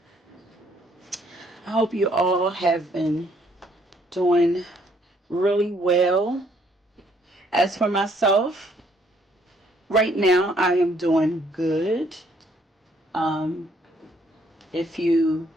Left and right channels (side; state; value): both; normal; correlation 0.66